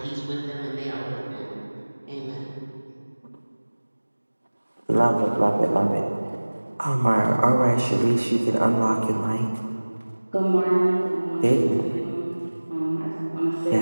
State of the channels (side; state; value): both; inverted; correlation -1.00